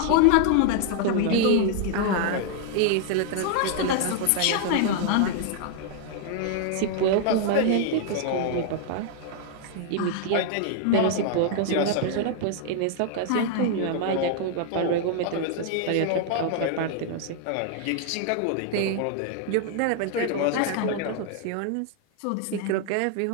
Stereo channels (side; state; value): both; different; correlation 0.00